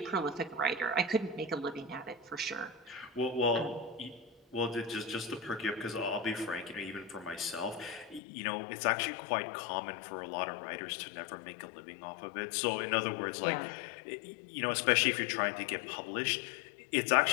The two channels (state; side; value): drops out; right; at 8.2 s